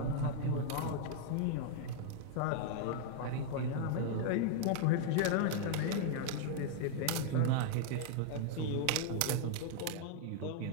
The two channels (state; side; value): different; both; correlation 0.00